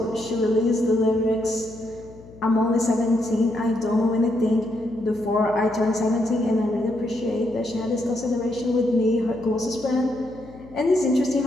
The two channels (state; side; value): noise; left; hum, 20 dB below the sound